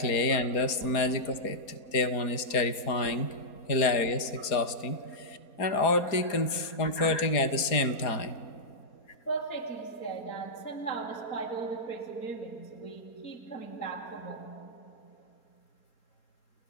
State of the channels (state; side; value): late; right; 4.2 ms